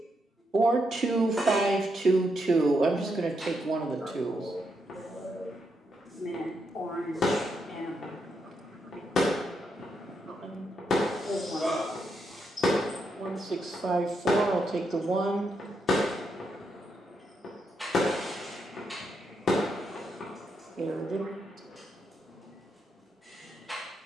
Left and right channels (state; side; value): normal; both; correlation 0.80